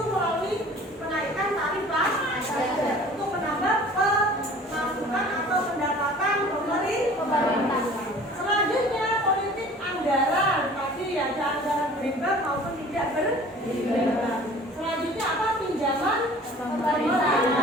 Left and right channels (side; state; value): both; normal; correlation 0.47